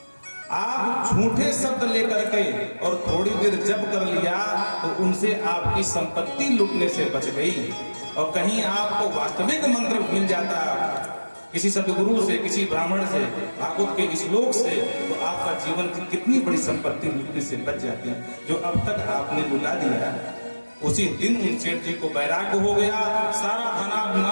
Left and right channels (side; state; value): both; inverted; correlation -1.00